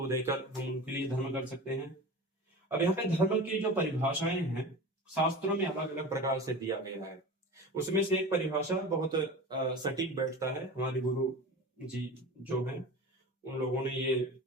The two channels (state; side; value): normal; both; correlation 0.33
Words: देकर हम उनके लिए धर्म कर सकते हैं। अब यहाँ पे धर्म की जो परिभाषाएं हैं शास्त्रों में अलग अलग प्रकार से दिया गया है। उसमें से एक परिभाषा बहुत सटीक बैठता है। हमारे गुरु जी जो हैं उन लोगों ने ये